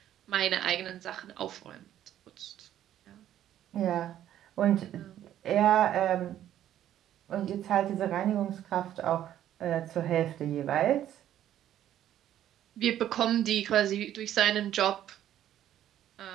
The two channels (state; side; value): quieter; left; 11.6 dB